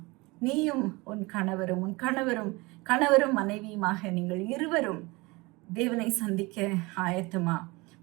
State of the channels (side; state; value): left; quieter; 24.2 dB